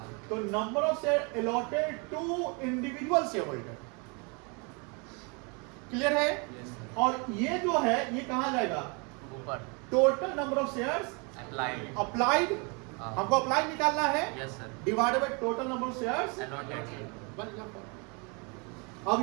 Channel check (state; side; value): quieter; left; 32.5 dB